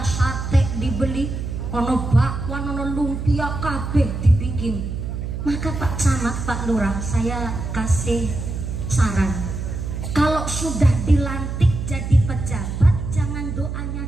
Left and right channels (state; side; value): noise; right; hum, 5 dB below the sound